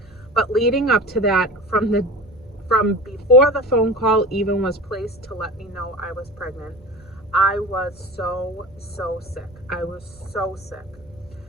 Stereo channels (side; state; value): right; noise; rumble, 25 dB below the sound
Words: But leading up to that, from before the phone call even was placed to let me know I was pregnant, I was so sick. I was so sick.